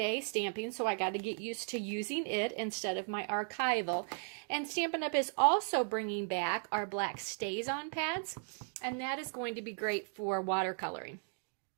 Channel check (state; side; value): silent; left; 54 dB below the other